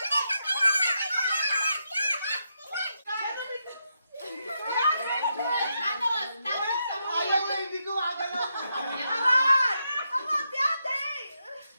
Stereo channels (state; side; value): inverted; both; correlation -0.83